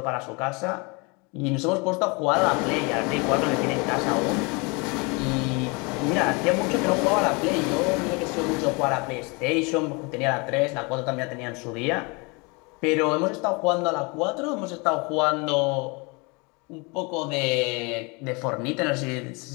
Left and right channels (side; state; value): right; quieter; 29.4 dB